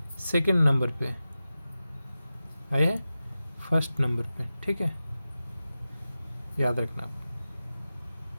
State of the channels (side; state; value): both; inverted; correlation -0.94